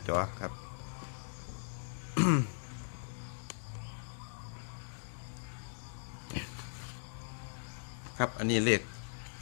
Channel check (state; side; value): silent; right; 52 dB below the other